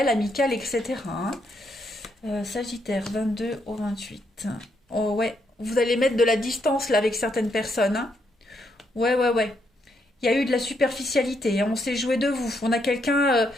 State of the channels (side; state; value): both; normal; correlation 0.77